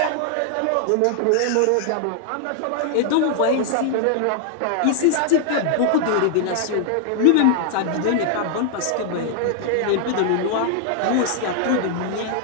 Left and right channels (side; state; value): both; different; correlation 0.00